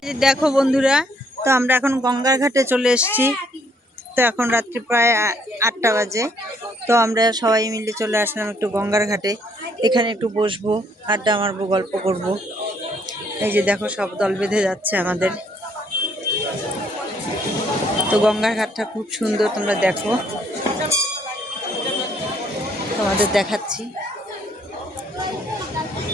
দেখো বন্ধুরা, তো আমরা এখন গঙ্গার ঘাটে চলে এসেছি। তো এখন রাত্রি প্রায় 8টা বাজে। তো আমরা সবাই মিলে চলে আসলাম একটু গঙ্গার ঘাটে, এখানে একটু বসবো, আড্ডা মারবো, গল্প করব। এই যে দেখো সব দল বেঁধে যাচ্ছে আমাদের। তো গঙ্গার ঘাটটা খুব সুন্দর, তোমরা দেখো, তোমাদের দেখাচ্ছি।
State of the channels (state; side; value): normal; both; correlation 0.67